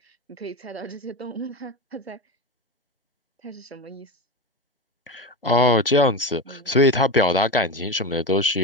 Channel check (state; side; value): normal; both; correlation 0.20